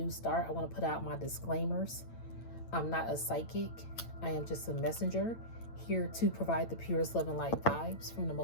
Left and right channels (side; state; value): right; late; 8.9 ms